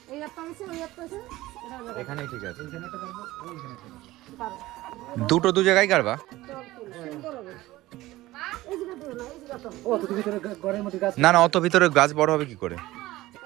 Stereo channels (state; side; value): quieter; left; 17.4 dB